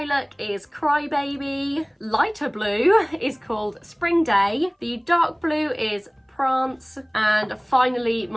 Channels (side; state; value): both; identical; correlation 1.00